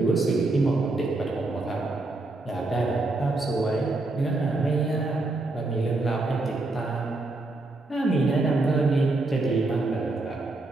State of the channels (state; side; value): quieter; left; 3.1 dB